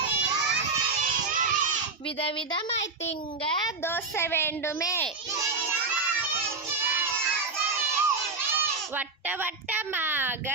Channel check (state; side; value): quieter; left; 4.0 dB